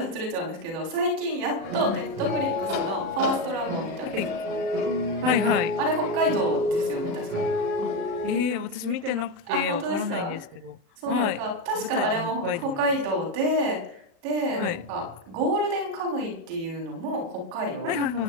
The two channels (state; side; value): late; left; 37 ms